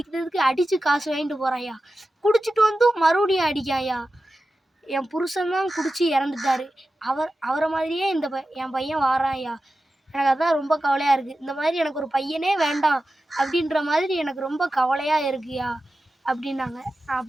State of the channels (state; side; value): normal; both; correlation 0.93